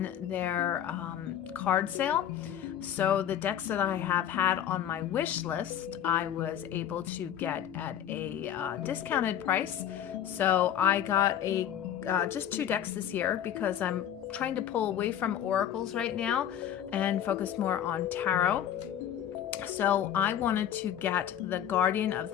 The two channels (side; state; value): right; quieter; 10.2 dB